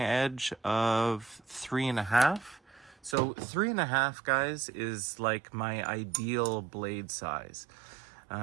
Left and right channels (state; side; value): drops out; left; at 3.2 s